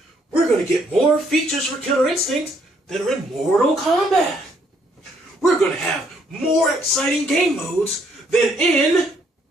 we're going to get more features for Killer Instinct that are in Mortal Kombat. We're going to have more exciting game modes than in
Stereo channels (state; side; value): normal; both; correlation 0.69